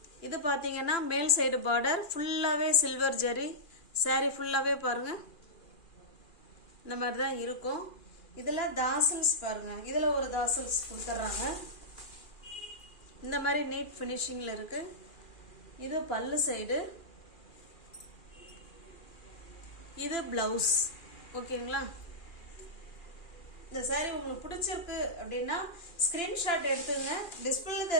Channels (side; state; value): right; late; 2.4 ms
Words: இது பார்த்தீங்கன்னா மேல் சைடு பார்டர் ஃபுல்லாகவே சில்வர் ஜரி. சாரி ஃபுல்லாகவே பாருங்க இந்த மாதிரி தான் இருக்கும். இதில் தாசல்ஸ் பாருங்க. இதில் ஒரு தாசல்ஸ் கொடுத்துட்றாங்க. இந்த மாதிரி நீட் ஃபினிஷிங்ல இருக்கு. இது பல்லு சைடு. இது பிளவுஸ். ஓகேங்களா? இந்த சாரி உங்களுக்கு பிடிச்சிருக்கு அப்படின்னா ஸ்கிரீன்ஷாட் எடுத்துங்க. டிஸ்பிளே